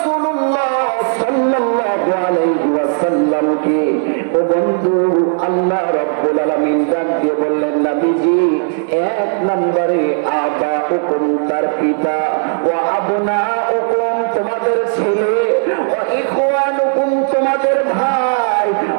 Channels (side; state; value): left; silent; digital silence